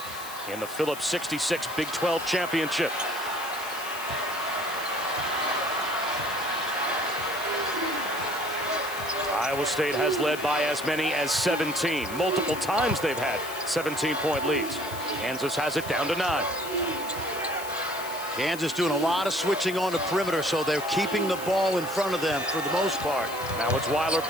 in the Phillips 66 Big 12 Championship. Iowa State has led by as many as 17. Multiple times they've had 17-point leads. Kansas has it down to 9. Kansas doing a lot of switching on the perimeter, so they're keeping the ball in front of them for the most part. Now it's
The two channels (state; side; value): noise; left; hiss, 12 dB below the sound